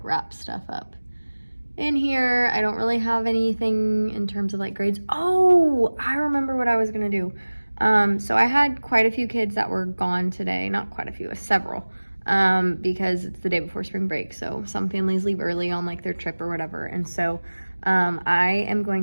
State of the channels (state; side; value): inverted; both; correlation -1.00